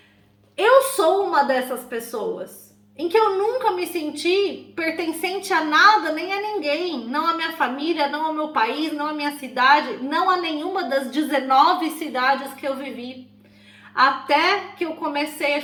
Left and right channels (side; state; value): both; identical; correlation 1.00